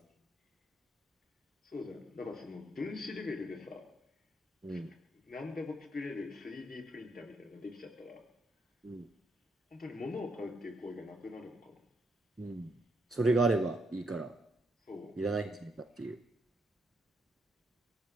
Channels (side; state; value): both; normal; correlation 0.77